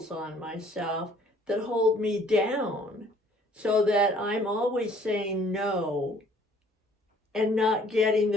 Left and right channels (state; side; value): normal; both; correlation 0.58